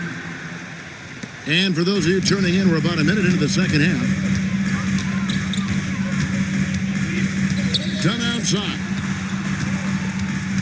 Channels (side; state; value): both; identical; correlation 1.00